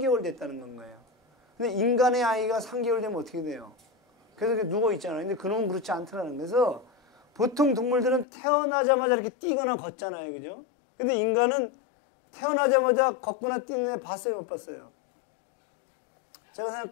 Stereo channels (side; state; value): right; drops out; at 8.2 s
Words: 됐다는 건 거예요. 근데 인간의 아이가 3개월 되면 어떻게 돼요? 그래서 이렇게 누워 있잖아요. 근데 그놈은 그렇지 않더라는 거예요. 그래서 보통 동물들은 태어나자마자 이렇게 뛰거나 걷잖아요. 그죠? 근데 인간은 태어나자마자 걷거나 뛰는 애 봤어요? 못 봤어요? 제가